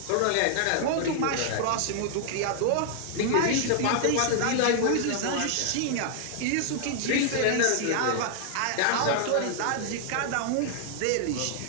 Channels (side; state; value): both; different; correlation 0.00